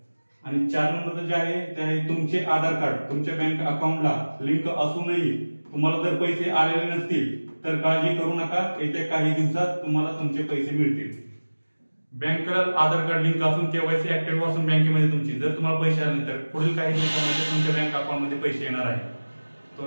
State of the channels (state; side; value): inverted; both; correlation -1.00